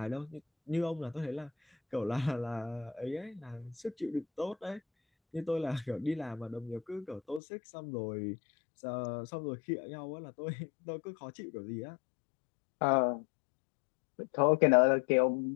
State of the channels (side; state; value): right; drops out; at 7.4 s